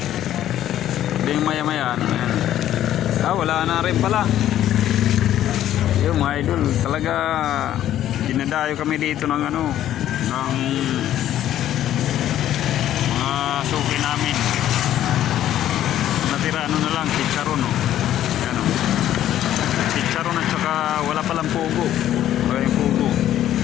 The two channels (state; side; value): quieter; right; 12.0 dB